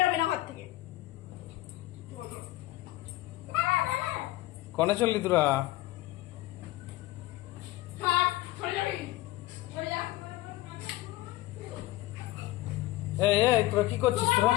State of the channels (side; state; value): right; quieter; 17.2 dB